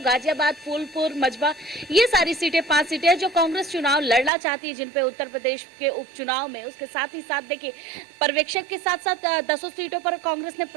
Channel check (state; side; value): drops out; left; at 4.3 s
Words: फूलपुर, मझवा, ये सारी सीटें 5 सीटें हैं जो कांग्रेस चुनाव लड़ना चाहती है, जिन पे उत्तर प्रदेश के उपचुनाव में। उसके साथ ही साथ देखिए, पर्यवेक्षक के साथ साथ 10 सीटों पर कांग्रेस ने